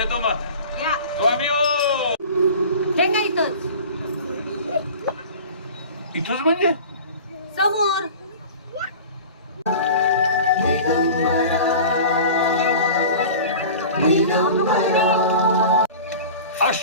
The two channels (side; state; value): both; inverted; correlation -0.38